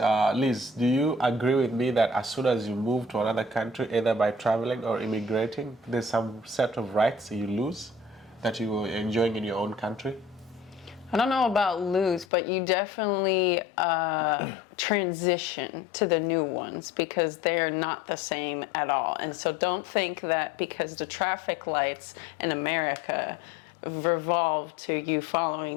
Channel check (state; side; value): drops out; right; at 12.2 s